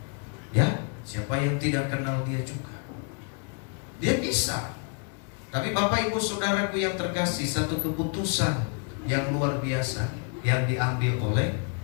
Ya, siapa yang tidak kenal dia juga? Dia bisa. Tapi Bapak Ibu Saudaraku yang terkasih, satu keputusan yang luar biasa yang diambil oleh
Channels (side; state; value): right; quieter; 39.8 dB